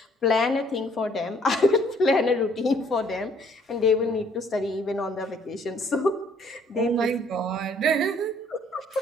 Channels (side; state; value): both; normal; correlation 0.62